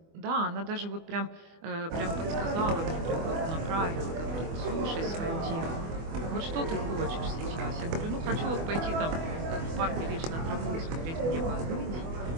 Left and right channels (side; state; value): left; late; 24 ms